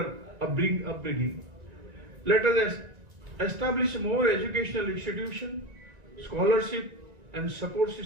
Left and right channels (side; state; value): left; late; 1.9 ms